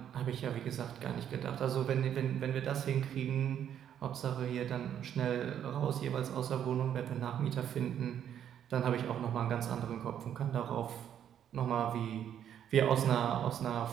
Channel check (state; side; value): quieter; left; 9.7 dB